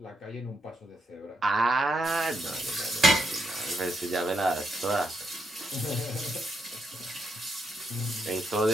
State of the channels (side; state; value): both; normal; correlation 0.79